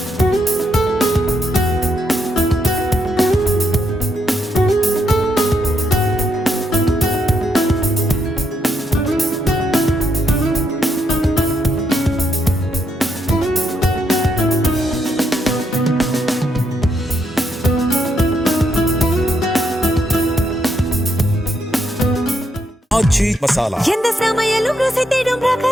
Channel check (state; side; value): normal; both; correlation 0.77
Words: ஆச்சி மசாலா. எந்த சமையலும் ருசி தேடும்